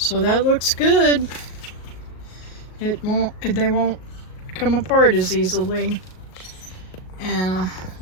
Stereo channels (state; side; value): late; right; 38 ms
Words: that looks good. They won't come apart as easily. And